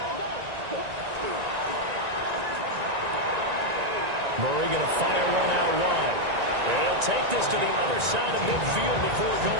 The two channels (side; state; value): left; late; 1.9 ms